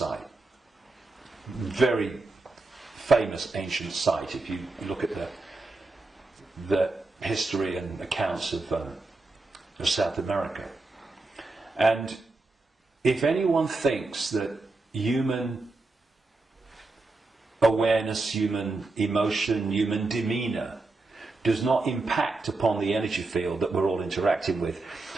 very famous ancient site if you look at the history and accounts of South America. And if anyone thinks that human awareness, human emotion, human demeanour does not impact upon the energy field that we're all interacting with,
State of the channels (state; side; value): quieter; left; 3.3 dB